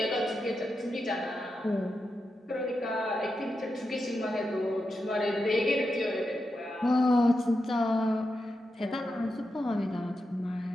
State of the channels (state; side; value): normal; both; correlation 0.88